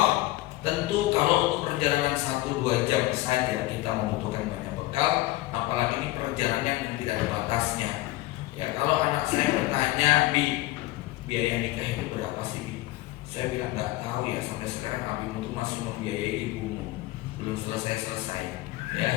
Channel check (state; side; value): quieter; right; 18.1 dB